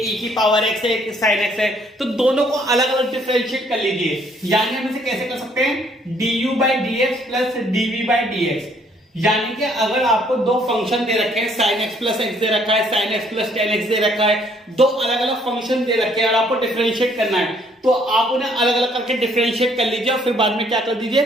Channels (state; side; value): normal; both; correlation 0.64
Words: ई की पावर एक्स है एक साइन एक्स है, तो दोनों को अलग अलग डिफरेंशिएट कर लीजिए। यानी हम इसे कैसे कर सकते हैं, du by D x plus dv by D x. यानी कि अगर आपको दो फंक्शन दे रखे हैं, साइन एक्स प्लस एक्स दे रखा है, sine x plus ten x दे रखा है, दो अलग अलग फंक्शन दे रखे हैं और आपको डिफरेंशिएट करना है, तो आप उन्हें अलग अलग करके डिफरेंशिएट कर लीजिए और फिर बाद में क्या कर दीजिए,